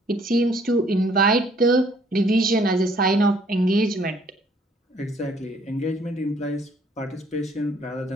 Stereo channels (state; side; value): normal; both; correlation 0.62